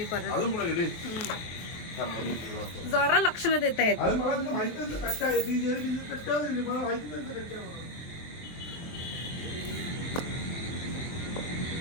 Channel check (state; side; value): late; right; 23 ms